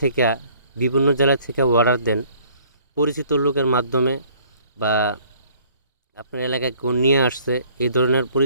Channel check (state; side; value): inverted; both; correlation -0.58